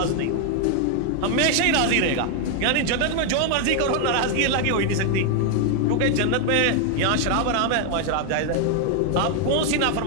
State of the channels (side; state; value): both; different; correlation 0.00